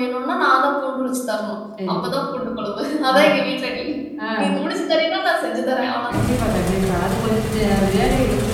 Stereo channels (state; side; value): identical; both; correlation 1.00